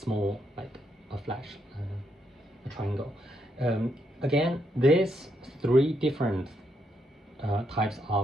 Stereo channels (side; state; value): both; normal; correlation 0.78